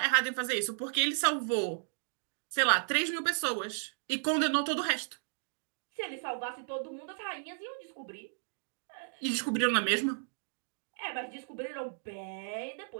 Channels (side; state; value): left; silent; digital silence